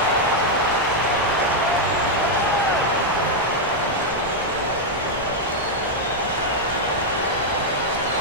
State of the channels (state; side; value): normal; both; correlation -0.01